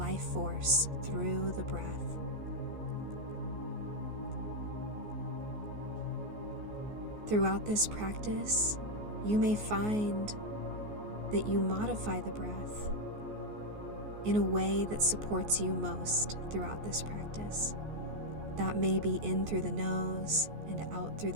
force through the breath. Throughout this practice, you may find that you modify the breath in a way that supports you most throughout this practice. That may be in through the nose and out through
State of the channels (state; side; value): late; left; 14 ms